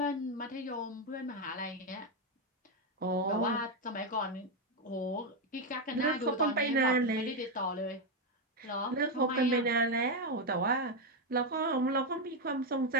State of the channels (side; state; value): both; normal; correlation 0.06